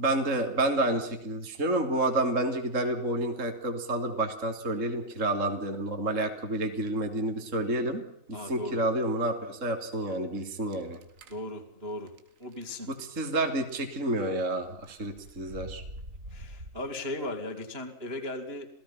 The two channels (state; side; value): late; left; 3.7 ms